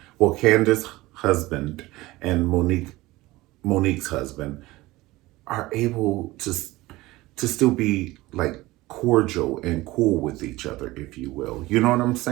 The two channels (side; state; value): left; quieter; 19.2 dB